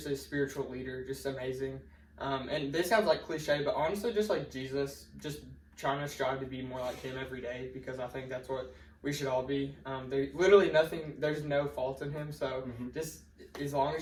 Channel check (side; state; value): both; identical; correlation 1.00